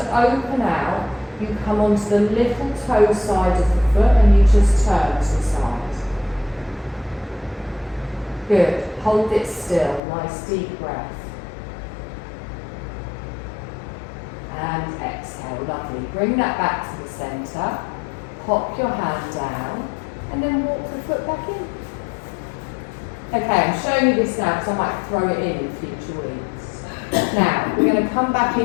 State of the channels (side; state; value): right; drops out; at 10.0 s